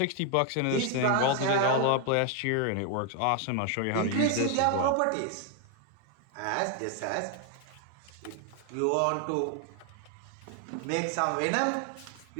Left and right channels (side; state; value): both; different; correlation 0.00